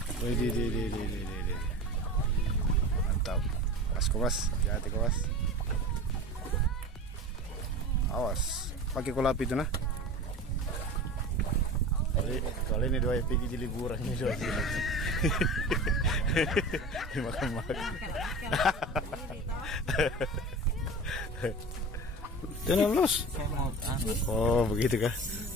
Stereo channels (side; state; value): both; normal; correlation 0.33